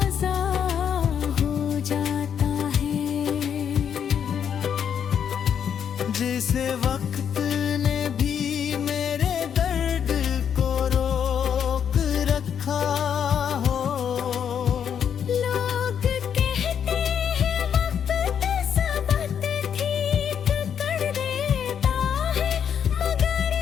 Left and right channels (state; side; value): quieter; right; 8.2 dB